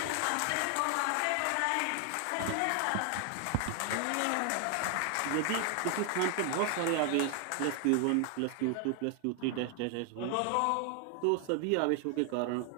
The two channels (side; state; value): both; different; correlation 0.00